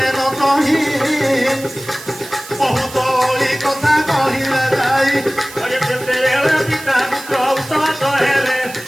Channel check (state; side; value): noise; right; hiss, 15 dB below the sound